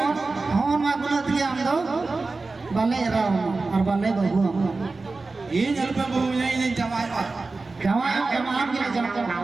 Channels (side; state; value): left; quieter; 3.7 dB